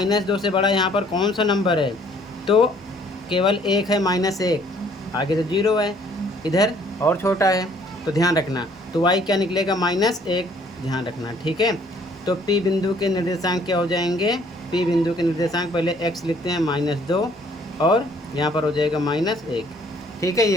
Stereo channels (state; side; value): normal; both; correlation 0.60